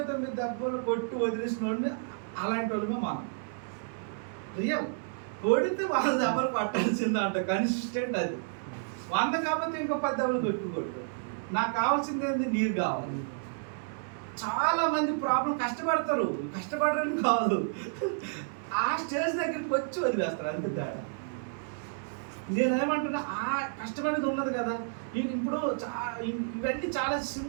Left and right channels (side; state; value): left; silent; 57 dB below the other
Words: దెబ్బలు కొట్టి వదిలేసిన వాడిని అలాంటి వాళ్ళమే మనం. రియల్ కొడితే 100 దెబ్బలు కొట్టాల్సిందే అంట, కన్సిస్టెంట్ అది. 100 కాకపోతే ఇంకో 10 దెబ్బలు కొట్టు. నాకు కావాల్సింది ఏంది, నీరు కావాలి. చాలా మంది ప్రాబ్లం కష్టపడతారు, కష్టపడరని కాదు, ఆ స్టేజ్ దగ్గరికి వచ్చి వదిలేస్తారు అంతే తేడా. నేనేమంటున్నా ఆ కష్టపడేది ఉన్నది కదా. ఇప్పుడు ఇవన్నీ చాలా